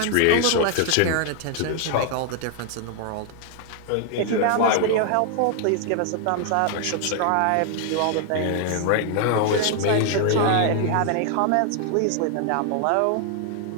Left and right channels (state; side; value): different; both; correlation 0.00